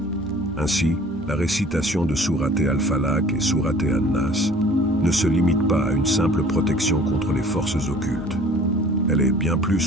Ainsi, la récitation de Sourate Al-Falaq et Sourate An-Nas ne se limite pas à une simple protection contre les forces occultes. Elle est bien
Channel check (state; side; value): normal; both; correlation 0.49